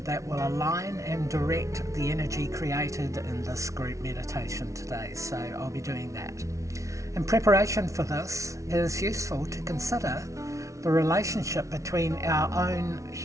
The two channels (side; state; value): left; late; 0.15 ms